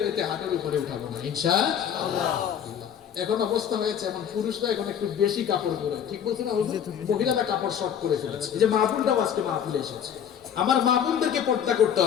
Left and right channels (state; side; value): quieter; right; 8.8 dB